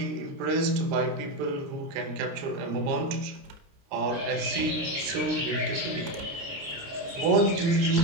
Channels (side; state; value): left; late; 29 ms